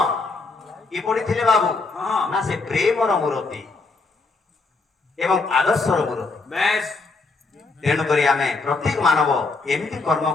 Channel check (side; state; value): right; quieter; 3.8 dB